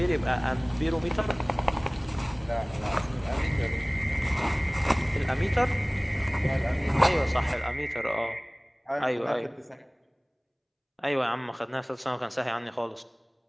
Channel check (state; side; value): identical; both; correlation 1.00